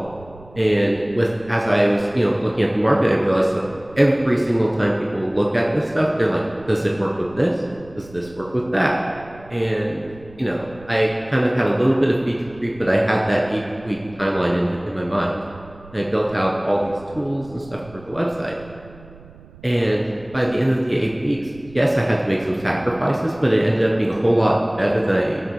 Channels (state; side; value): noise; right; rumble, 21 dB below the sound